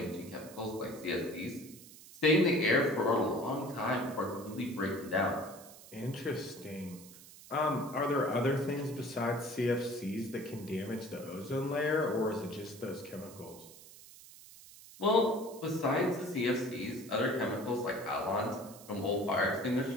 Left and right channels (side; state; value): right; noise; hiss, 19 dB below the sound